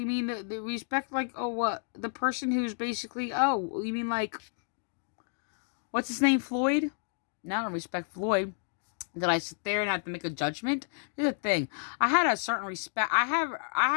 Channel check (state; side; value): silent; right; digital silence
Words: mean the respect, like, oh, what? The person who's basically, oh, you mean like, what's his name, Floyd? No, I don't respect Floyd. Did I sit there and have to make a judgment? Here's the thing. I had a certain respect. I